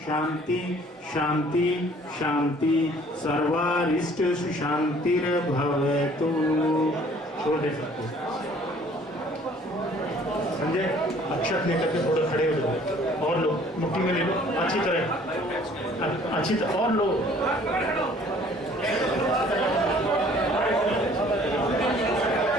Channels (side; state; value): both; normal; correlation 0.55